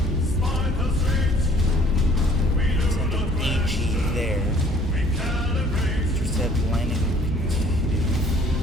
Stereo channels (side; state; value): both; normal; correlation 0.56